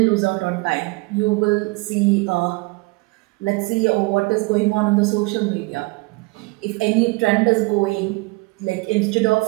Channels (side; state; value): left; quieter; 25.2 dB